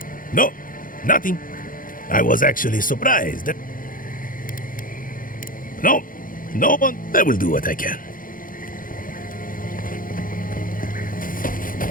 No, nothing. I was actually surprised. No one. I will do what I can.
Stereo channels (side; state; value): right; late; 0.40 ms